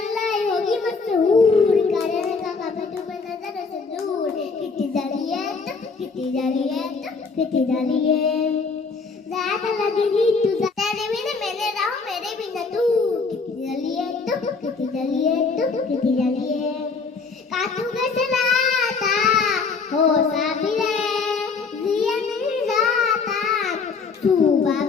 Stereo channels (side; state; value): right; quieter; 4.7 dB